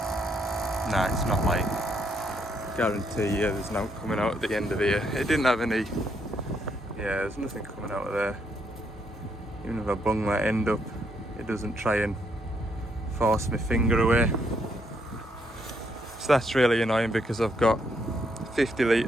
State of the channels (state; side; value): normal; both; correlation 0.74